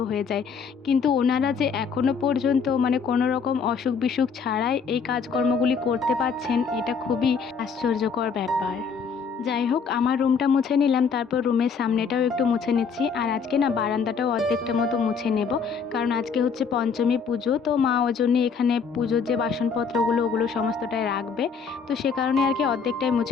হয়ে যায়, কিন্তু ওনারা যে এখনও পর্যন্ত কোনো রকম অসুখ বিসুখ ছাড়াই এই কাজকর্মগুলি করতে পারছেন, এটা খুবই আশ্চর্যকর ব্যাপার। যাই হোক, আমার রুমটা মুছে নিলাম, তারপর রুমের সামনেটাও একটু মুছে নিচ্ছি। আর আজকে না বারান্দাটাও অর্ধেকটা মতো মুছে নেব, কারণ আজকে হচ্ছে পঞ্চমী পুজো, তো মা ওই জন্য এখানে পুজোর যে বাসনপত্রগুলো ওগুলো সমস্তটাই রাখবে, তো সে কারণে আর কি অর্ধেকটাই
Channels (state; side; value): quieter; right; 5.8 dB